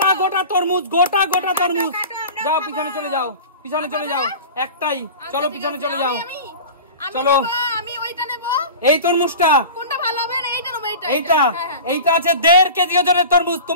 গোটা তরমুজ, গোটা গোটা তরমুজ। যাও পিছনে চলে যাও, পিছনে চলে যাও। একটাই, চলো পিছনে চলে যাও। চলো, এই তরমুজটা এইটা আছে 1.5 কেজি ওজনের তরমুজ।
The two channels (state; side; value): inverted; both; correlation -0.35